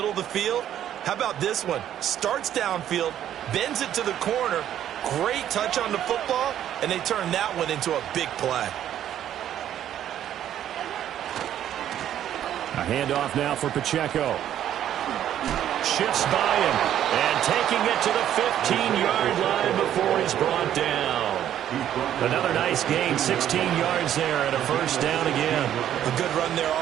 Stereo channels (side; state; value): left; quieter; 10.9 dB